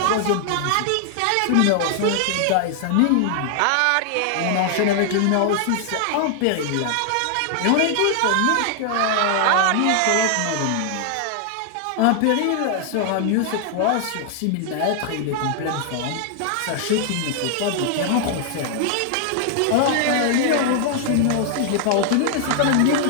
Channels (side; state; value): both; different; correlation 0.00